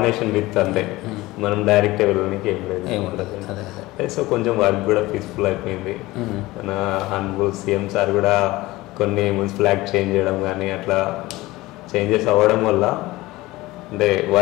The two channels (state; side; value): quieter; right; 19.3 dB